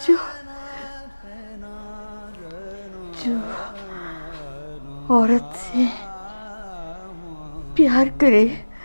जो औरत से प्यार करे,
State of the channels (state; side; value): inverted; both; correlation -1.00